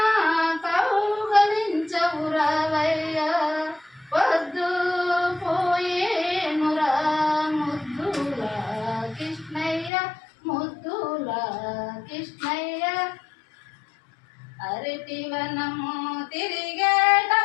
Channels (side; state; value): right; drops out; at 9.9 s